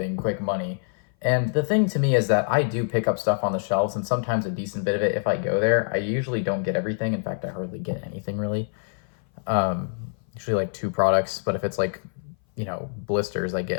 quick money. And the thing to me is that I do pick up stuff on the shelves, and sometimes a decent bit of it if I go there. I usually don't get everything. In fact, I hardly get anything really. Usually like 2 products, but if it's like, blisters, I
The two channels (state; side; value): silent; right; 58 dB below the other